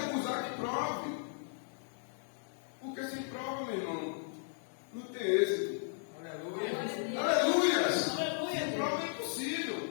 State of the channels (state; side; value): silent; right; digital silence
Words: que prove. Porque sem prova, meu irmão, não tem êxito. Aleluia! Sem prova é impossível.